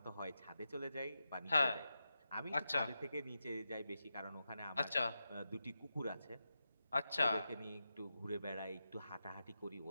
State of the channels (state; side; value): inverted; both; correlation -0.89